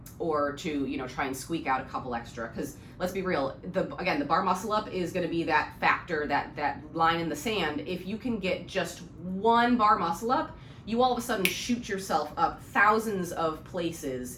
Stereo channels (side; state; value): both; identical; correlation 1.00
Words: or to try and squeak out a couple extra. Because let's be real, the bar muscle up is going to be that factor, that line in the sand. If you can get just one bar muscle up, you all of a sudden shoot yourself up thousands of places